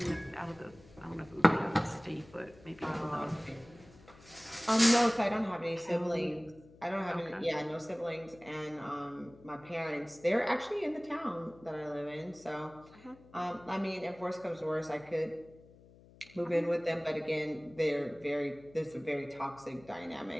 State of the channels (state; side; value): noise; left; hum, 23 dB below the sound